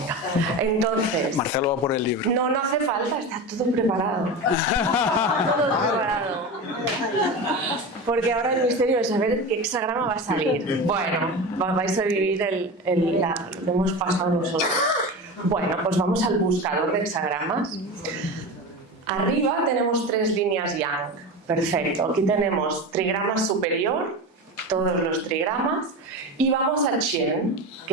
Entonces. Marcelo va por el libro. No hace falta, está todo preparado. Todo preparado. Porque ahora el misterio es saber qué hexagrama va a salir. Bueno, vais a vivir lo que hemos pasado nosotros. Bueno, pues vamos al buscador de hexagramas. Arriba tenemos 3 líneas yang. Perfecto. Aquí tenemos trigrama superior, todos los trigramas, y vamos al Chen,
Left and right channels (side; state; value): both; normal; correlation 0.26